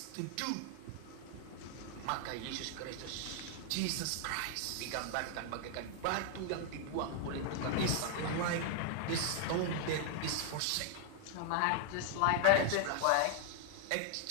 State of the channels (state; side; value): different; both; correlation 0.00